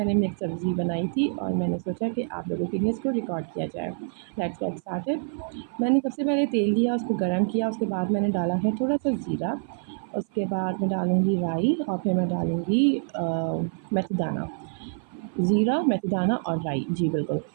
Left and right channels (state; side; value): silent; left; 55 dB below the other